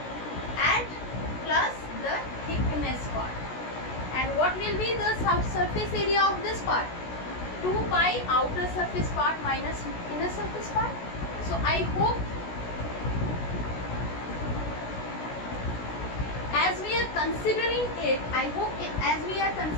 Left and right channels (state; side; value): late; right; 16 ms